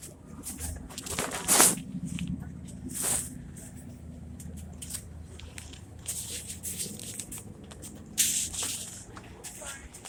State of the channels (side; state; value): both; identical; correlation 1.00